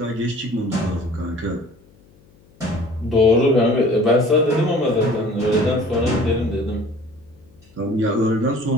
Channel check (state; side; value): noise; left; hum, 29 dB below the sound